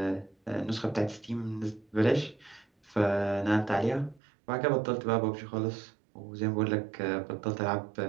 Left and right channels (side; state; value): left; drops out; at 4.2 s